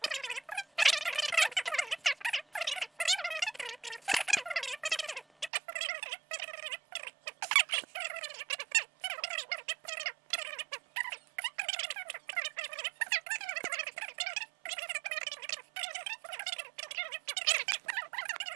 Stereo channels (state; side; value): drops out; left; at 5.5 s